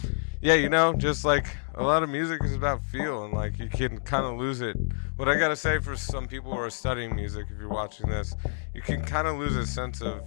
yeah, you know, just like a lot of music is about feel, and like you can kind of lose it. What I gotta say for some people who are studying music, if you're watching this, you can kind of lose a sense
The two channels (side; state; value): right; silent; digital silence